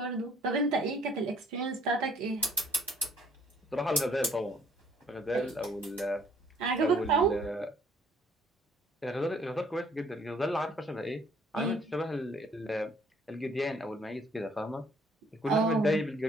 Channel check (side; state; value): both; normal; correlation 0.61